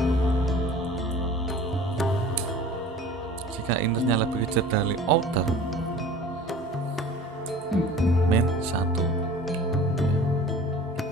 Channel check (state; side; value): normal; both; correlation 0.43